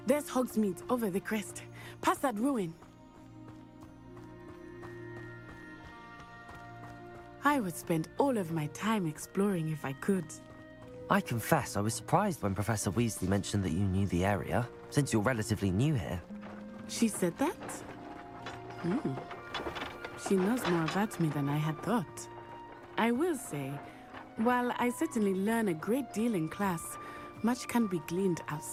there's Hogsmeade over the crest. Past that ruin. I would spend all of my time exploring if I could. I confess I was surprised when Professor Weasley mentioned that you knew the area, since you're relatively new here. She said that? She knows more about me than I had thought. I will say, while I certainly learn a great deal in class, much can be gleaned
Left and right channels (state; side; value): identical; both; correlation 1.00